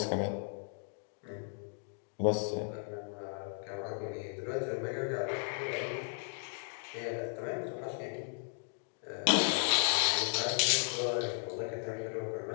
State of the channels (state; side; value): silent; right; 54 dB below the other